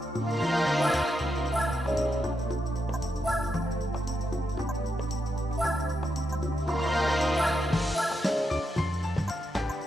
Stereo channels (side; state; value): both; normal; correlation 0.84